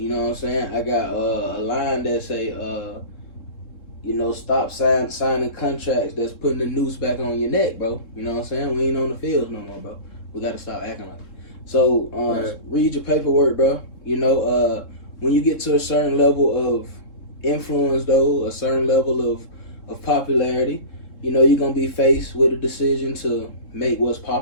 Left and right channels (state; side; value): late; right; 3.7 ms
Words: know what I'm saying? I got a line that say, you know, stop signing contracts that's putting the noose back on your neck, bro. You know what I'm saying? We ain't on the fields no more, bro. We got to stop acting like it. So, read your paperwork, bro. You know, when you get to a certain level of influence, though, a certain level of popularity, you know, you're going to be faced with a decision to make what's